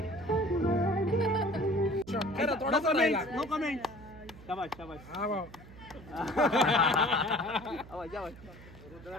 No comment. शाबाश. हा भाऊ.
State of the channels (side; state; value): right; noise; hum, 18 dB below the sound